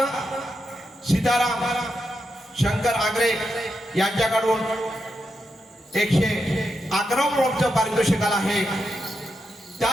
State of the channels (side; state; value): both; normal; correlation 0.85